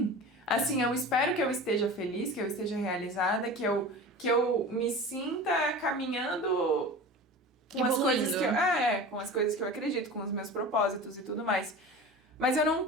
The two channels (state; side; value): normal; both; correlation 0.34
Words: Assim, eu espero que eu esteja feliz, que eu esteja realizada, que eu me sinta caminhando com as coisas que eu... com as coisas que eu acredito, com os meus propósitos e tudo mais. Mas eu não